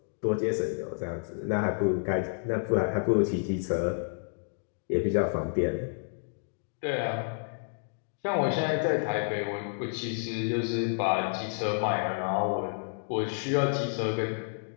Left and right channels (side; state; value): right; silent; digital silence